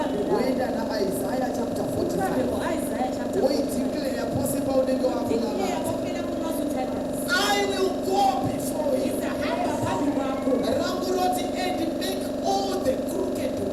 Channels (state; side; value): identical; both; correlation 1.00